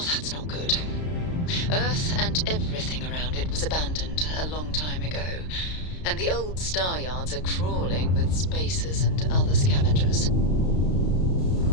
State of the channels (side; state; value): right; late; 33 ms